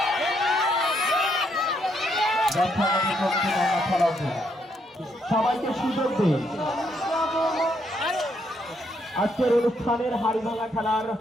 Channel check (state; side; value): normal; both; correlation 0.74